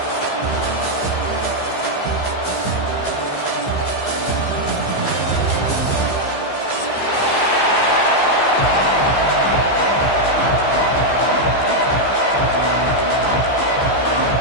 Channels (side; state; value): right; late; 15 ms